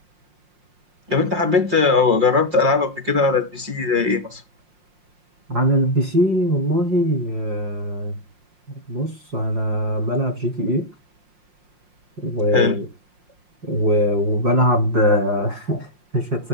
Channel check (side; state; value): left; late; 5.6 ms